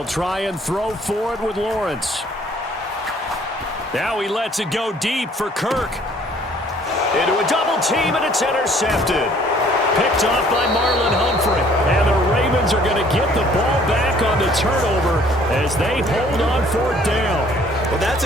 try and throw for it with Lawrence. Now he lets it go deep for Kirk. Into a double team, and it's intercepted. Picked off by Marlon Humphrey. And the Ravens are going to get the ball back on the turnover as they hold on 4th down. Well, that's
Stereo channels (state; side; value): normal; both; correlation 0.58